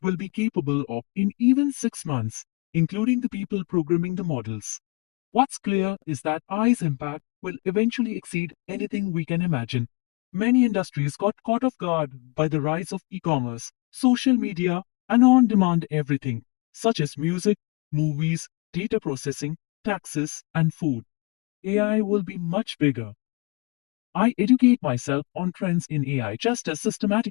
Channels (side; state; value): right; quieter; 28.2 dB